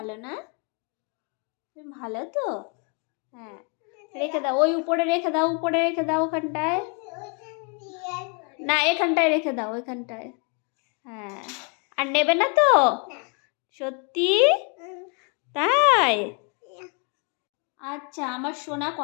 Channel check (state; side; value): quieter; right; 36.7 dB